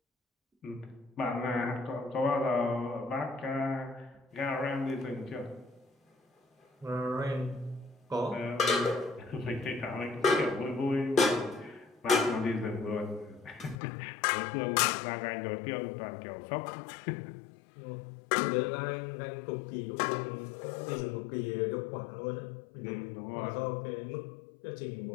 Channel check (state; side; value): drops out; right; at 13.8 s